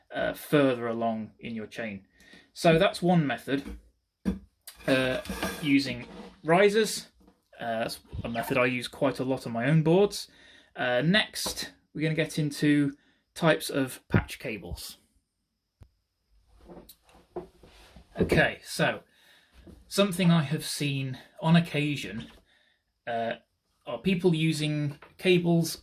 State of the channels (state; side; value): identical; both; correlation 1.00